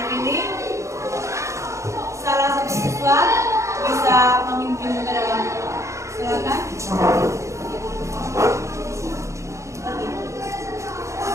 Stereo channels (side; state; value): left; late; 0.14 ms